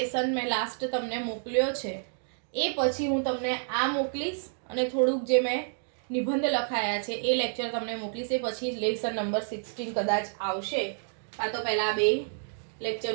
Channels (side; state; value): left; silent; digital silence